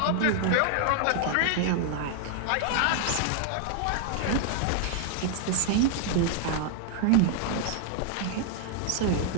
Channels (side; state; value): both; different; correlation 0.00